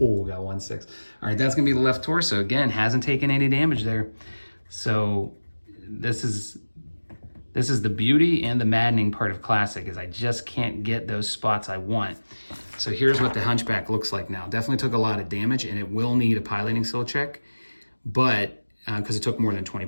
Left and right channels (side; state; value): both; inverted; correlation -1.00